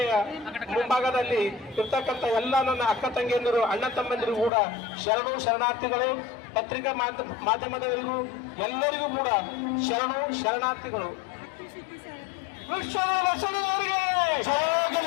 ಮುಂಭಾಗದಲ್ಲಿ ಇರ್ತಕ್ಕಂಥ ಎಲ್ಲ ನನ್ನ ಅಕ್ಕ ತಂಗಿಯಂದಿರು, ಅಣ್ಣ ತಮ್ಮಂದಿರು ಕೂಡ ಶರಣು ಶರಣಾರ್ಥಿಗಳು. ಪತ್ರಿಕಾ ಮಾಧ್ಯಮದವರಿಗೂ ಎಲ್ಲರಿಗೂ ಕೂಡ ಶರಣು ಶರಣಾರ್ಥಿಗಳು. ಲಕ್ಷ್ಮಣವರಿಗೆ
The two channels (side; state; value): right; drops out; at 4.5 s